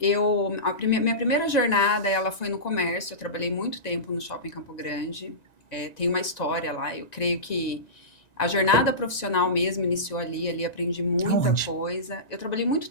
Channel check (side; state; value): right; late; 1.9 ms